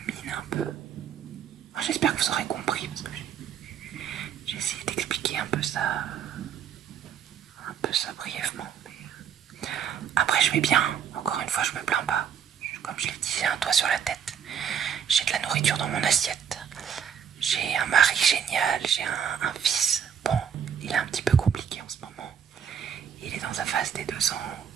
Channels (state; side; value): quieter; left; 7.9 dB